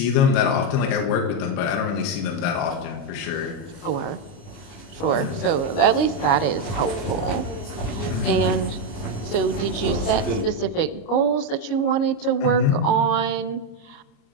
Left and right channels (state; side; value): late; right; 29 ms